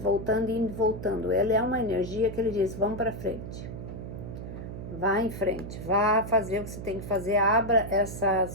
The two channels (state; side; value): noise; right; hum, 9 dB below the sound